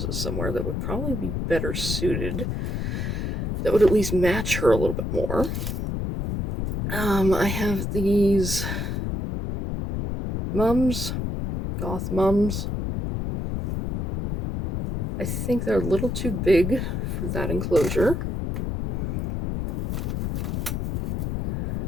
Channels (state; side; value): noise; left; rumble, 2 dB below the sound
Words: somewhere that would probably be better suited. That would at least match her a little bit more. I have these mums, goth mums. I think they're a little too big for that enclosure.